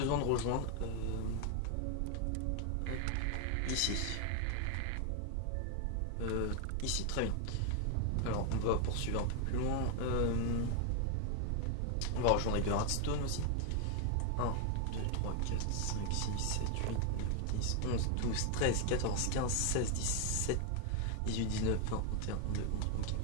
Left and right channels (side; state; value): both; different; correlation 0.01